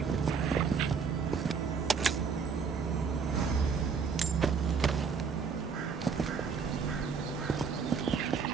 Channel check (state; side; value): quieter; left; 5.8 dB